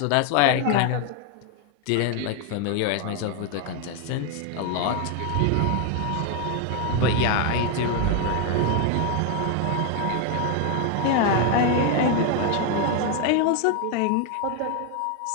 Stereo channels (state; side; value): different; both; correlation 0.01